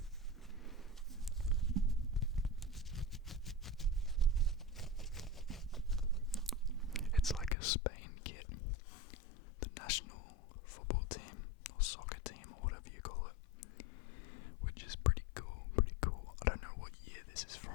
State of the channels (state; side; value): drops out; right; at 7.6 s